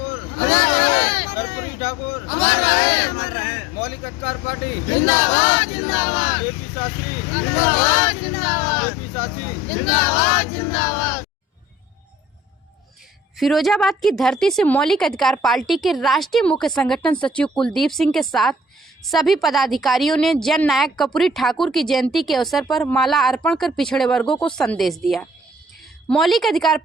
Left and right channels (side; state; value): both; normal; correlation 0.49